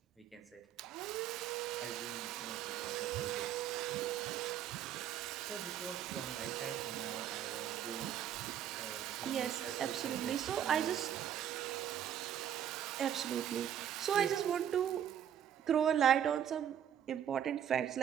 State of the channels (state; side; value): quieter; left; 9.9 dB